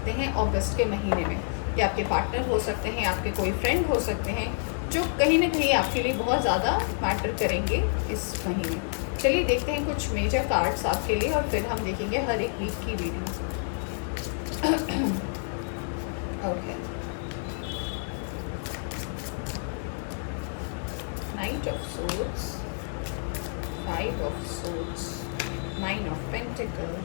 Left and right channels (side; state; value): right; silent; 59 dB below the other